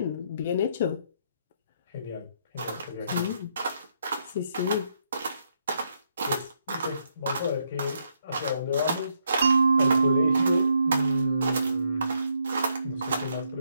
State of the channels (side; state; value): both; inverted; correlation -0.76